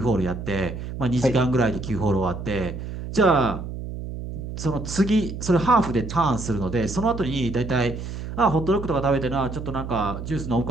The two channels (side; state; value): right; noise; hum, 8 dB below the sound